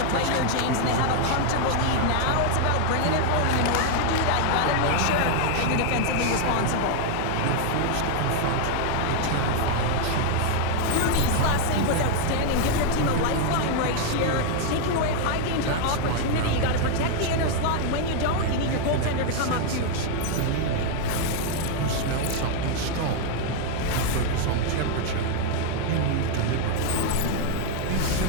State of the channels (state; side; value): different; both; correlation 0.00